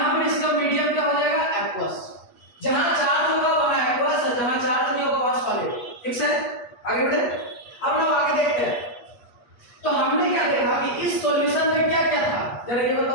पर इसका मीडियम क्या हो जाएगा? एक्वस। जहां चार्ज होगा वहां एक्वस, और जहां चार्ज नहीं होगा वहां सॉलिड। ठीक है, आगे बढ़े। अब लोग आगे देखते हैं। तो हमने क्या देखा कि इस सॉल्यूशन में क्या क्या था, जरा ये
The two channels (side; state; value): right; late; 8.3 ms